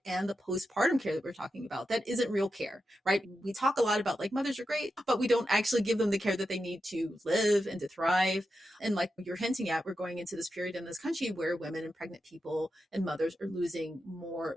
and the postpartum care that we're talking about. That isn't real care, right? We talk a lot about like mothers are great, but we don't actually give them the care that they need to live and to thrive. And like you're hinting at, we're going into this period in this country where women and pregnant people and mothers are losing more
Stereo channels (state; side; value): normal; both; correlation 0.89